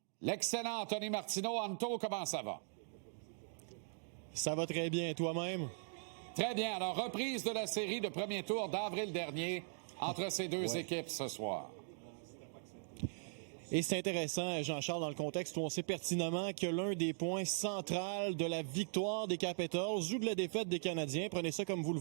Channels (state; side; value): silent; left; digital silence